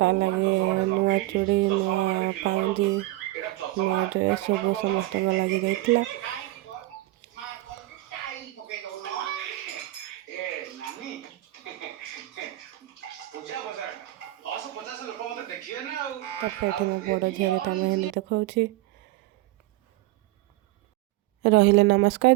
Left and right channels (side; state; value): left; quieter; 17.7 dB